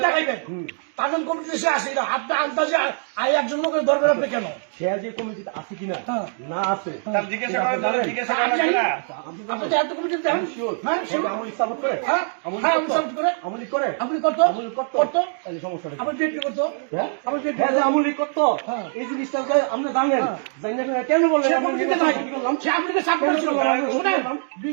দেখাইবেন তার জন্য কমিটিতে সে আসে কিনা, আপনি আন্দাজে একজন লোকের দরকার আপনি কেন সে যে কমিটিতে আছে কিনা না আছে আপনি এত কমিটিতে দেখেন আমলি সাপোর্ট করে আমলি করে আপনি করতো তাহলে সমস্যা আপনি ডেট করতো আমলি করতো এই জিনিসটা আপনি জানেন কেন বললেন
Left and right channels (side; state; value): left; silent; 56 dB below the other